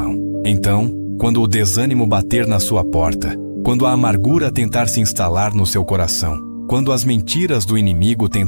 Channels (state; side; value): inverted; both; correlation -1.00